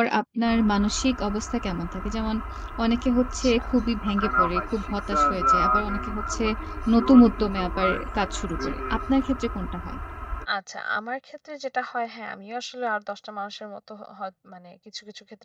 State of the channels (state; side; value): identical; both; correlation 1.00